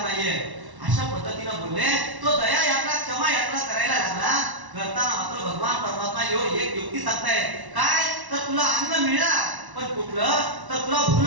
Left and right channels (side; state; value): left; late; 1.1 ms